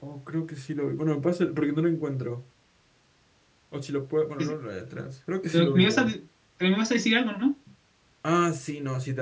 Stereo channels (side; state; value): both; identical; correlation 1.00